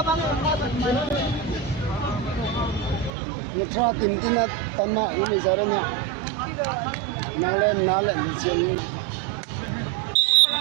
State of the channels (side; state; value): left; drops out; at 3.1 s